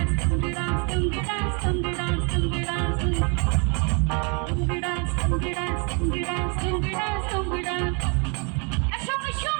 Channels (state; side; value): quieter; left; 36.3 dB